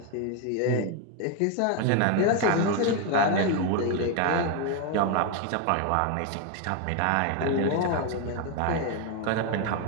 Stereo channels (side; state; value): both; different; correlation 0.01